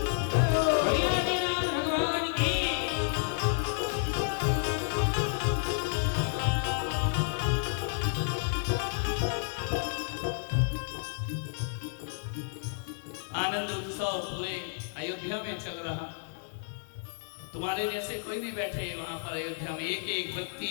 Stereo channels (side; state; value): right; silent; digital silence